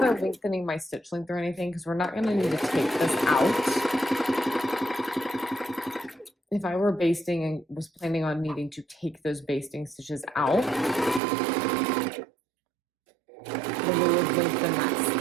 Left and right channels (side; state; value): left; drops out; at 11.2 s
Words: lengthening my stitch length or anything because we're not going to need to take this out. If I were basting and was planning on needing to take those basting stitches out, then we would lengthen that